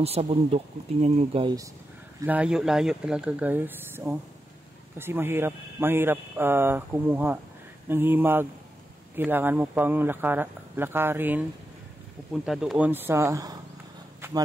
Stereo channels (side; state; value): both; normal; correlation 0.88